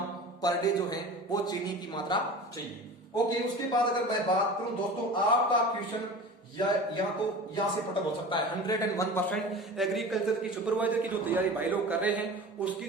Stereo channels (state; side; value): normal; both; correlation 0.35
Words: पर डे जो है वो चीनी की मात्रा चाहिए। ओके, उसके बाद अगर मैं बात करूं दोस्तों, आपका क्वेश्चन या तो यहां से पटक हो सकता है 101%। एग्रीकल्चर की सुपरवाइजर की जो तैयारी भाई लोग कर रहे हैं उसकी